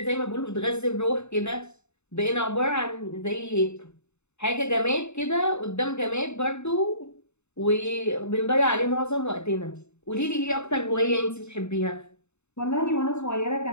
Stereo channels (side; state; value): right; late; 0.82 ms